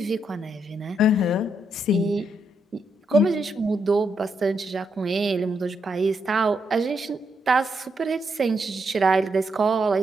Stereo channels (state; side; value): normal; both; correlation 0.79